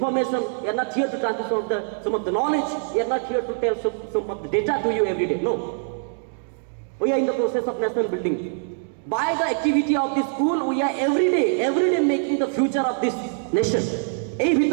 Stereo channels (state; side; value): silent; left; digital silence